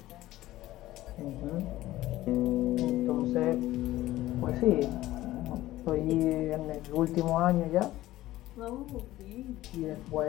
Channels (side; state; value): right; quieter; 15.9 dB